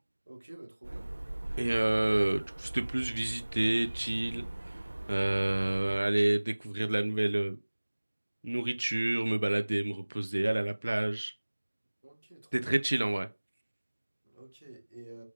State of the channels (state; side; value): inverted; both; correlation -1.00